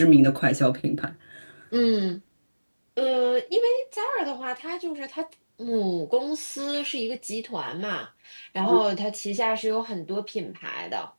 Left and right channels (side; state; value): both; inverted; correlation -1.00